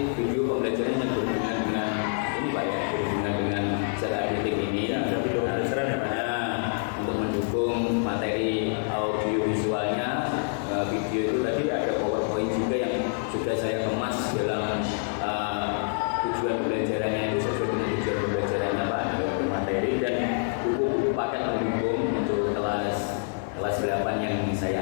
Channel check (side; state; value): right; silent; 60 dB below the other